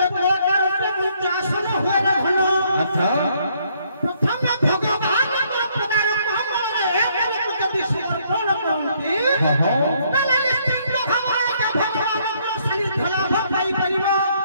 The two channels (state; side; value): inverted; both; correlation -0.68